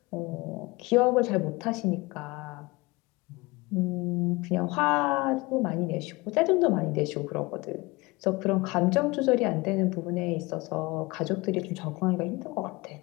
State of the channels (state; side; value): quieter; right; 23.7 dB